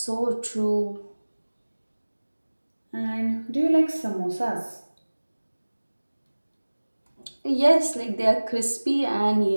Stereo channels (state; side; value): inverted; both; correlation -1.00